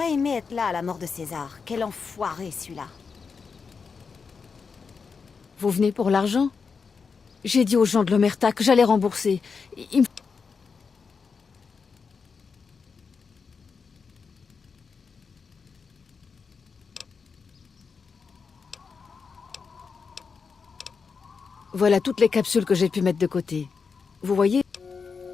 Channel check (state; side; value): quieter; right; 5.4 dB